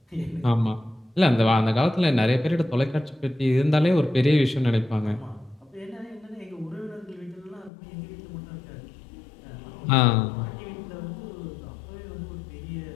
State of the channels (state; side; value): drops out; right; at 7.7 s